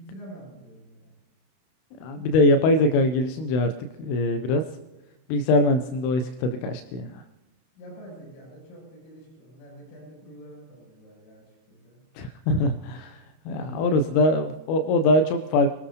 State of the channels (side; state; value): right; late; 31 ms